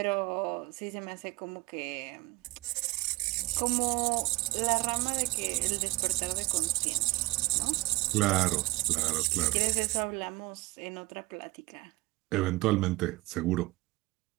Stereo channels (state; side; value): quieter; left; 21.8 dB